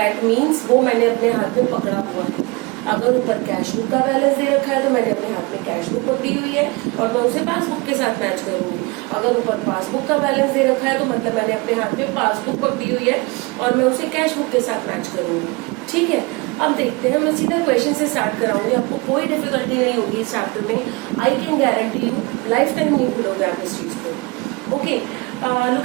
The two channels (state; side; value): quieter; left; 26.2 dB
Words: मीन्स वो मैंने अपने हाथ में पकड़ा हुआ है। अगर ऊपर कैश बुक का बैलेंस दे रखा है तो मैंने अपने हाथ में कैश बुक पकड़ी हुई है और मैं उसे पासबुक के साथ मैच करूंगी। अगर ऊपर पासबुक का बैलेंस दे रखा है तो मतलब मैंने अपने हाथ में पासबुक पकड़ी हुई है और मैं उसे कैश बुक के साथ मैच करूंगी। ठीक है, अब देखते हैं, मैं सीधा क्वेश्चन से स्टार्ट कराऊंगी, आपको कोई डिफिकल्टी नहीं होगी इस चैप्टर में। I can guarantee you life time नहीं भूलोगे आप इस चीज को। Okay,